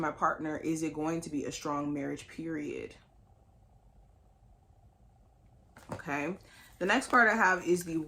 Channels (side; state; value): both; identical; correlation 1.00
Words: my partner, is it going to be a strong marriage, period? Okay. The next card I have is the